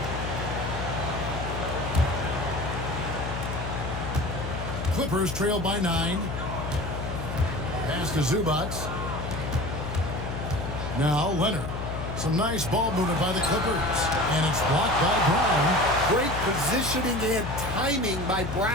Clippers trail by 9. Pass to Zubac. Now Leonard. Some nice ball movement by the Clippers. And it's blocked by Brown. Great positioning and timing by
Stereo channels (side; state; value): left; noise; hum, 5 dB below the sound